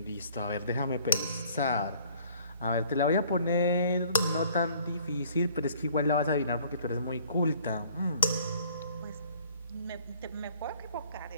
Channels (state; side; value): inverted; both; correlation -0.57